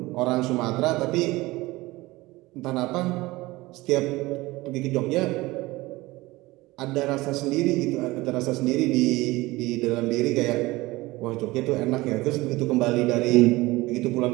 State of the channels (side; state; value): left; quieter; 20.3 dB